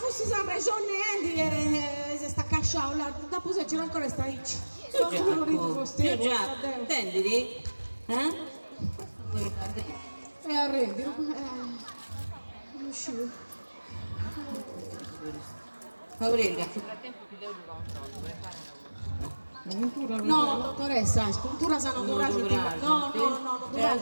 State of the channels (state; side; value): inverted; both; correlation -1.00